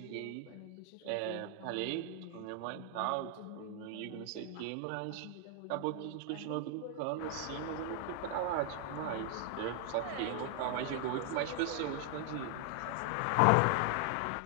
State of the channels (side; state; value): both; different; correlation 0.00